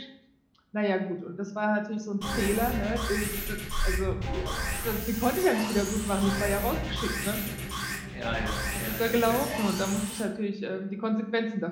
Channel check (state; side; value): identical; both; correlation 1.00